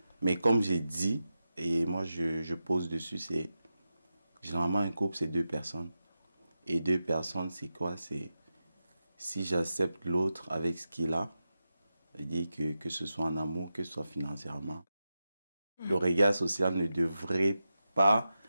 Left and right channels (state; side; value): inverted; both; correlation -0.91